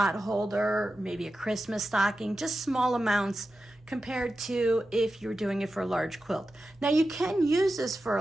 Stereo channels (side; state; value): both; normal; correlation 0.92